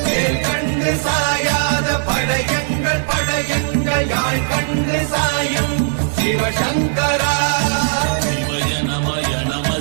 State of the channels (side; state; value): left; silent; digital silence